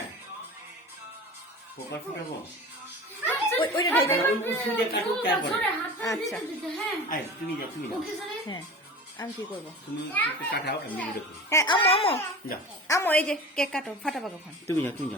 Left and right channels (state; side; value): normal; both; correlation 0.35